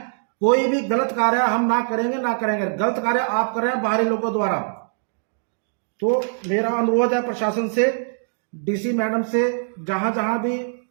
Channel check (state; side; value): silent; left; digital silence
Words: कोई भी गलत कार्य हम ना करेंगे, ना करेंगे। गलत कार्य आप कर रहे हैं बाहरी लोगों द्वारा। तो मेरा अनुरोध है प्रशासन से, डीसी मैडम से, जहां जहां भी